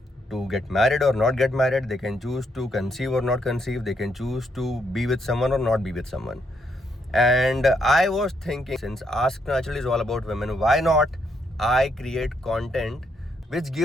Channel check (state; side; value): normal; both; correlation 0.75